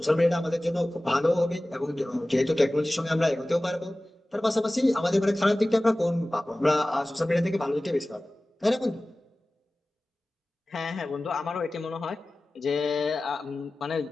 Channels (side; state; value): both; normal; correlation 0.97